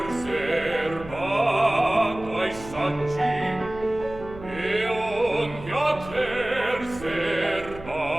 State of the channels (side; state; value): right; noise; hum, 15 dB below the sound